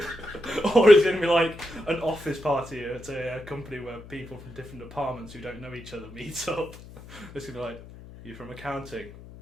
Or it's gonna be like an office party at a company where people from different departments who don't know each other meet up. It's gonna be like, you from accounting?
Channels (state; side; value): noise; left; hum, 17 dB below the sound